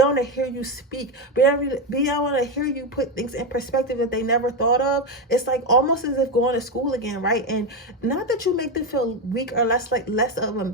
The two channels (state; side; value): normal; both; correlation 0.10